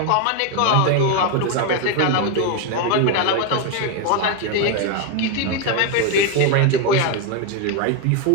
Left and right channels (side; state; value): both; different; correlation 0.01